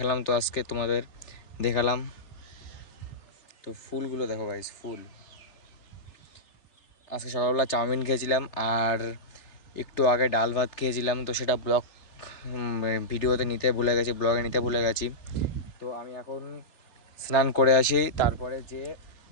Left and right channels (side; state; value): right; late; 3.3 ms